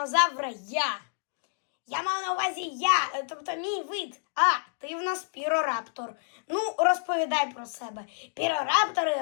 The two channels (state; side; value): silent; right; digital silence